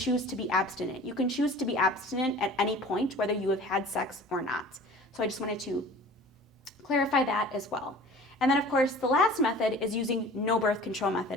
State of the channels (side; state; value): both; normal; correlation 0.43